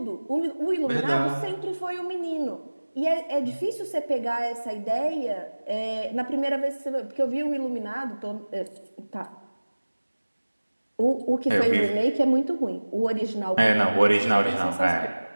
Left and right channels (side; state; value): both; inverted; correlation -1.00